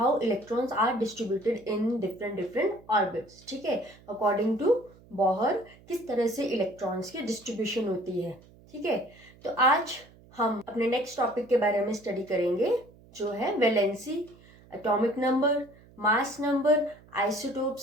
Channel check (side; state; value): right; noise; hum, 25 dB below the sound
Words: electrons are distributed in different different orbits. ठीक है, अकॉर्डिंग टू बोहर किस तरह से इलेक्ट्रॉन्स की डिस्ट्रीब्यूशन होती है। ठीक है, तो आज हम अपने नेक्स्ट टॉपिक के बारे में स्टडी करेंगे जो है valency, atomic number, mass number,